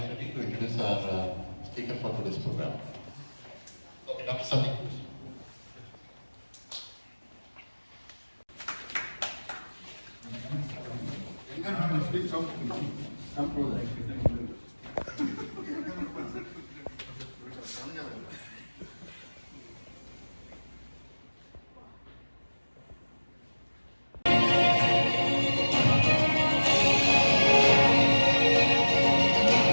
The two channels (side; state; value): both; inverted; correlation -1.00